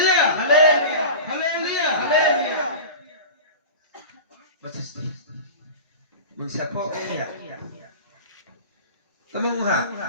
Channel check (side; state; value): both; inverted; correlation -0.32